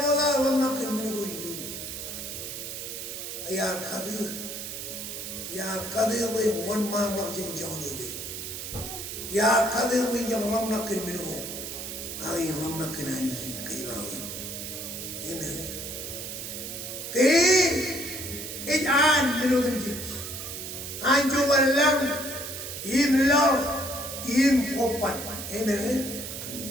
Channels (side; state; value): right; noise; hiss, 7 dB below the sound